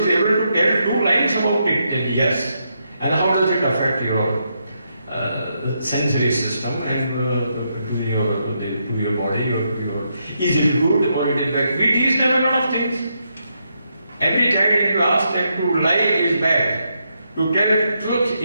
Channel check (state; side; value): inverted; both; correlation -0.80